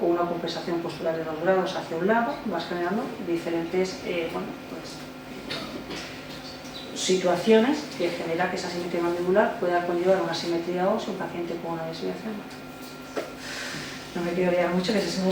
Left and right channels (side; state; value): both; identical; correlation 1.00